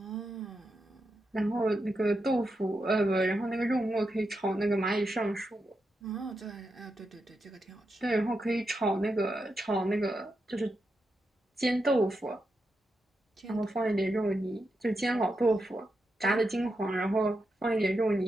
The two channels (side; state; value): both; normal; correlation 0.86